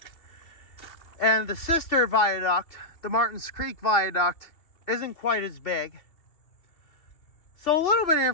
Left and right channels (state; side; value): late; right; 2.7 ms